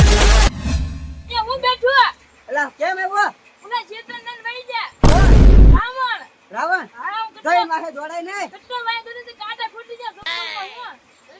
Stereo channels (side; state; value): both; identical; correlation 1.00